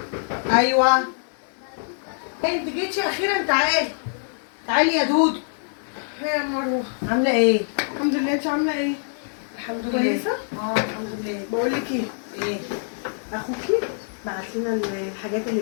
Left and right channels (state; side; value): silent; right; digital silence